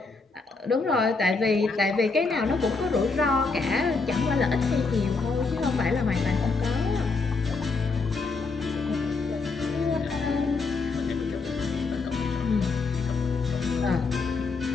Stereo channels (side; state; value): right; quieter; 4.1 dB